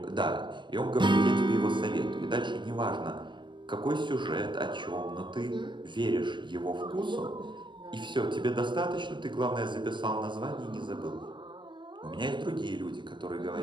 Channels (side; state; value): left; late; 0.22 ms